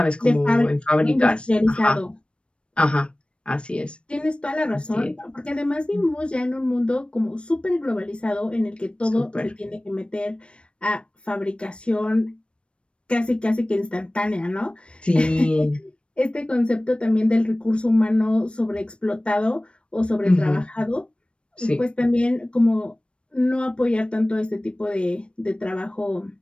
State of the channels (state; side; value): late; right; 0.058 ms